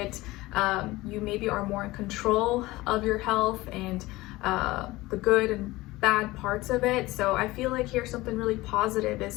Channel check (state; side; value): quieter; right; 19.4 dB